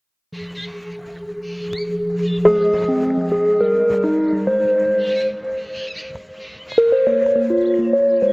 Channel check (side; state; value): both; identical; correlation 1.00